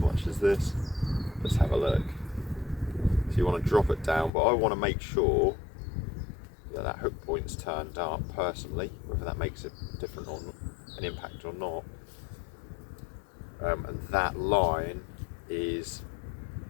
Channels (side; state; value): right; drops out; at 4.3 s